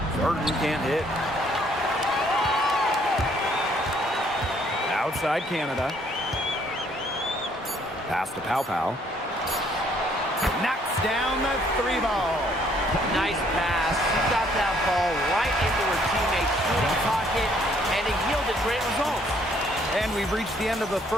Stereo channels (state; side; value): normal; both; correlation 0.65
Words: Burton can't hit. Outside Canada. Pass to Pow Pow. Knocks down the 3 ball. Nice pass. She got that ball right into her teammate's shooting pocket, and it yielded great results. And we've reached the end of the